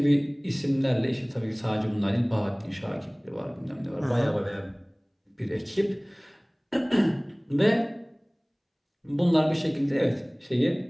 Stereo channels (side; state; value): both; identical; correlation 1.00